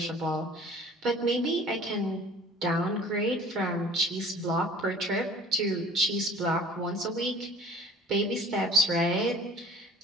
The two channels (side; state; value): both; normal; correlation 0.47